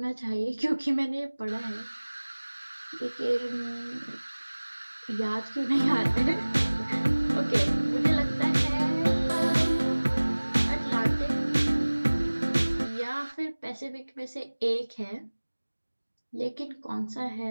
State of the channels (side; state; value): both; inverted; correlation -1.00